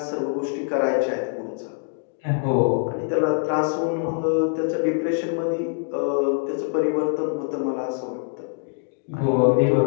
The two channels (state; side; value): silent; right; 60 dB below the other